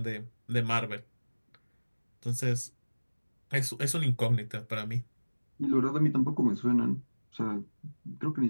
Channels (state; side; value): inverted; both; correlation -1.00